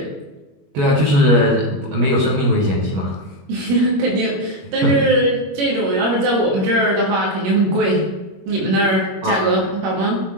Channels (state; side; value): late; left; 21 ms